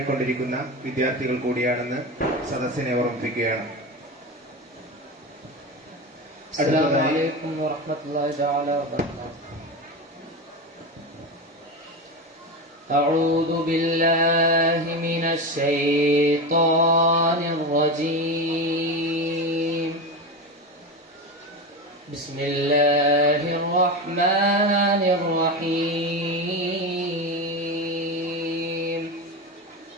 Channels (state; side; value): normal; both; correlation 0.20